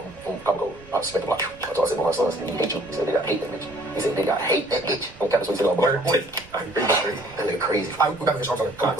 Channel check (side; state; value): right; noise; rumble, 22 dB below the sound